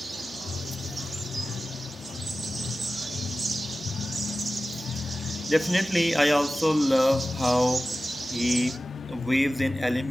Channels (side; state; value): both; normal; correlation 0.95